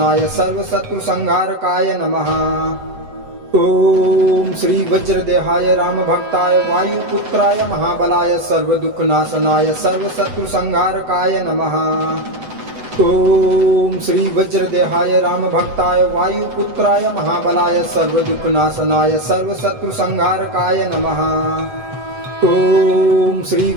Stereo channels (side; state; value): left; late; 8.0 ms